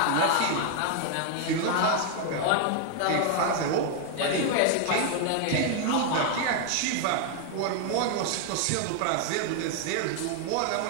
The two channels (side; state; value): both; different; correlation 0.00